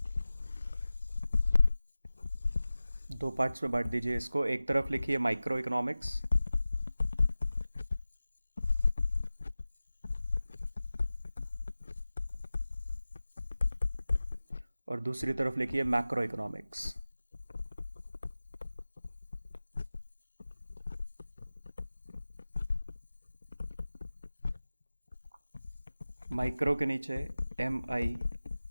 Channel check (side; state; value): both; inverted; correlation -0.96